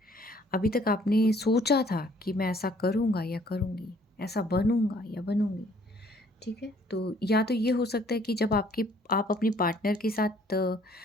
अभी तक आपने सोचा था कि मैं ऐसा करूँगा या करूँगी, ऐसा बनूँगा या बनूँगी, ठीक है? तो या तो ये हो सकता है कि जब आप अपने पार्टनर के साथ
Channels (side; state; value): both; normal; correlation 0.60